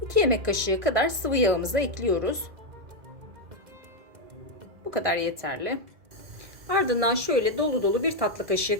2 yemek kaşığı kadar sıvı yağımızı ekliyoruz. Bu kadar yeterli. Ardından şöyle dolu dolu bir tatlı kaşığı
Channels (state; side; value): late; left; 1.6 ms